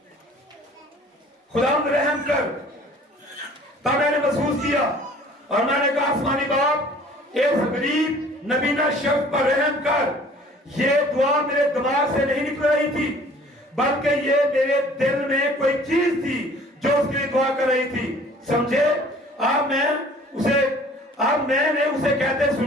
खुदावंद रहम कर। तब मैंने महसूस किया और मैंने कहा, आसमानी बाप, इस गरीब नबीना शख्स पर रहम कर। ये दुआ मेरे दिमाग से नहीं निकल रही थी, बल्कि ये मेरे दिल में कोई चीज थी जो उसके लिए दुआ कर रही थी। समझे? अब मैंने उसे कहते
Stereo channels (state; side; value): normal; both; correlation 0.51